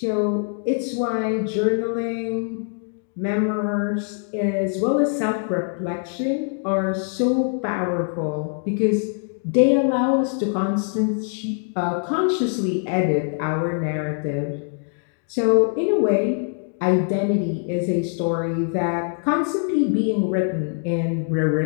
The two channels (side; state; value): right; silent; 56 dB below the other